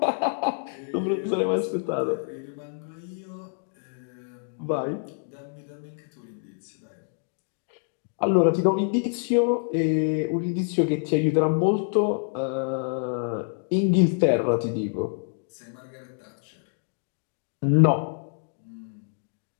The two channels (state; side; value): silent; right; digital silence